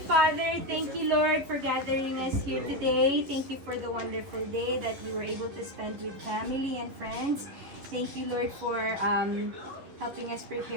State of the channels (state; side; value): late; left; 11 ms